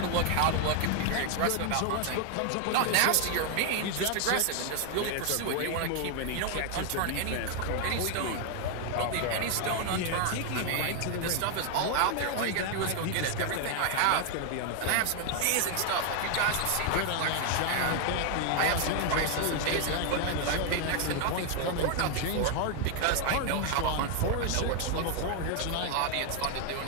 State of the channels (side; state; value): both; different; correlation 0.00